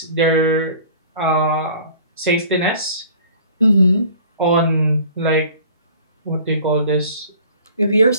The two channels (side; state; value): both; inverted; correlation -0.49